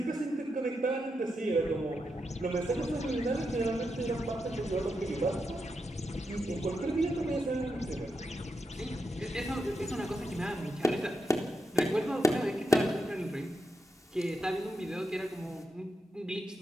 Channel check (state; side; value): normal; both; correlation 0.85